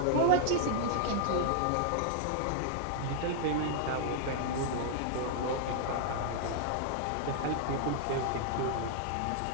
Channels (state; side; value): different; both; correlation -0.01